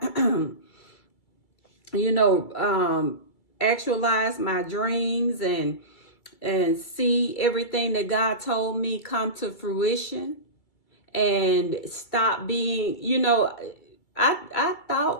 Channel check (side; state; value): right; late; 2.3 ms